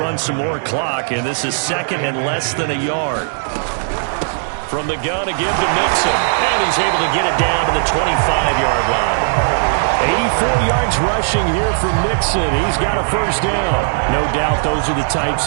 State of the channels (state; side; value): silent; left; digital silence